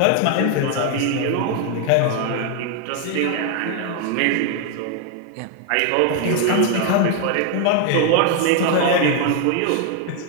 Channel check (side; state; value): both; different; correlation 0.00